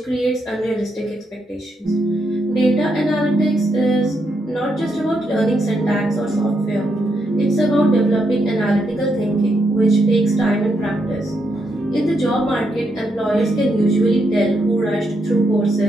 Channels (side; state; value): both; normal; correlation 0.80